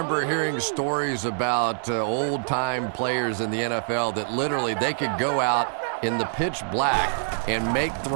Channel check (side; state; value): left; silent; digital silence